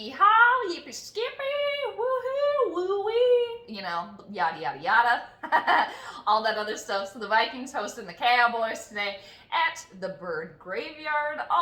yippee skippy, woohoo, woo-wee, you know, yada yada yada, all that other stuff. So the Vikings hosting the Cowboys today at the Bird Graveyard,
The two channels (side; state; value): both; identical; correlation 1.00